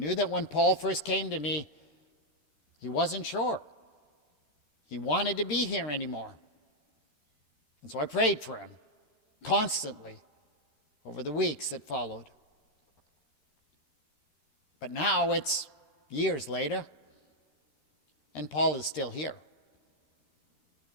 when Paul first came to me, he wasn't sure. He wanted to be here anymore. And so I prayed for him constantly over the weeks that followed. But now it's years later, and Paul is still here.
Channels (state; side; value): late; right; 13 ms